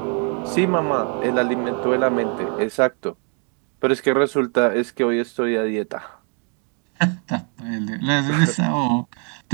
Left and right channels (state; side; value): quieter; left; 38.9 dB